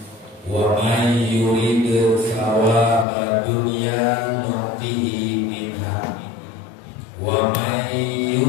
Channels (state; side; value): drops out; right; at 3.1 s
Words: Wa may yurid thawaba dunya nu'tihi minha wa may